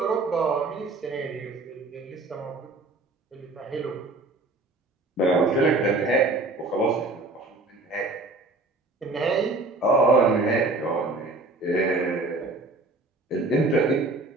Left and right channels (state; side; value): quieter; left; 3.1 dB